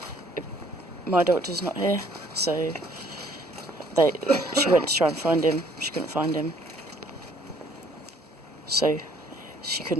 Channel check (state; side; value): normal; both; correlation 0.61